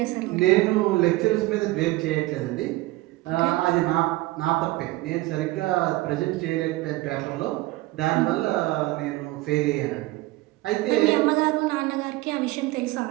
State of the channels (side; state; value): left; quieter; 19.0 dB